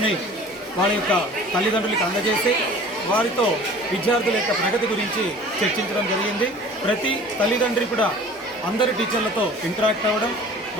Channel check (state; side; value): normal; both; correlation 0.45